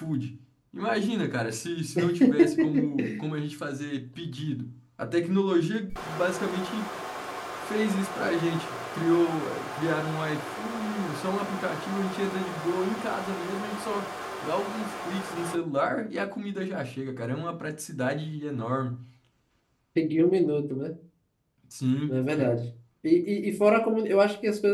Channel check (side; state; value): both; identical; correlation 1.00